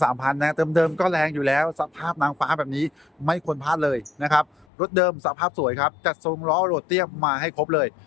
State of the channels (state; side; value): drops out; right; at 4.7 s